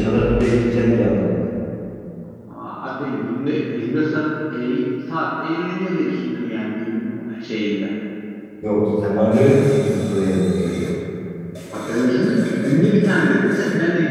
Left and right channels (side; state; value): both; identical; correlation 1.00